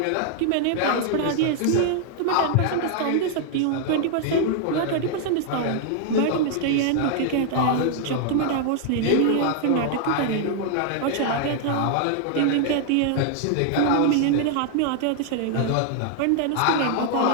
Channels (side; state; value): both; different; correlation 0.00